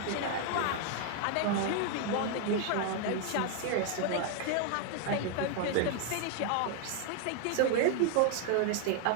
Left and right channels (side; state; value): both; different; correlation 0.00